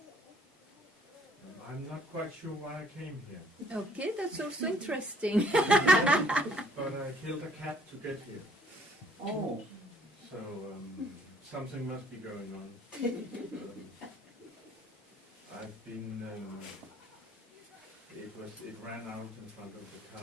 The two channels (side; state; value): both; normal; correlation 0.62